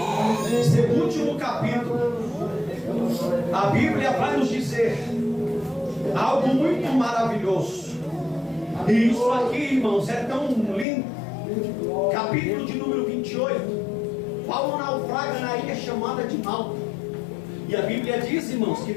esse último capítulo, a Bíblia vai nos dizer algo muito maravilhoso. E isso aqui, irmãos, é tão lindo. Capítulo de número 28. Paulo naufraga na ilha chamada de Malta. E a Bíblia diz, irmãos, que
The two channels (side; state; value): right; drops out; at 10.9 s